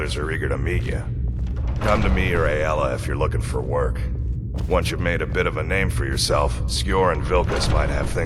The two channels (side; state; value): both; identical; correlation 1.00